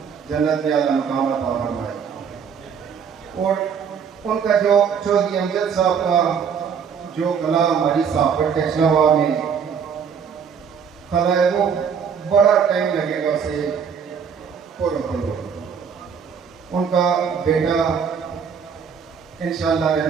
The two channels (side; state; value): left; quieter; 6.9 dB